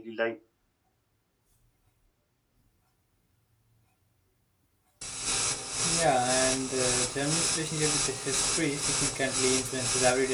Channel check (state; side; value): identical; both; correlation 1.00